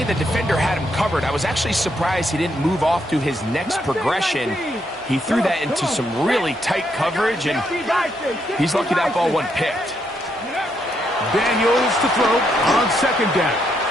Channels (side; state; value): both; normal; correlation 0.77